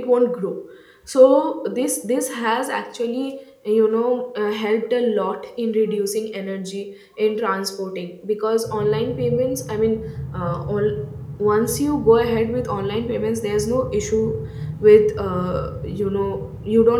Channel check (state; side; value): identical; both; correlation 1.00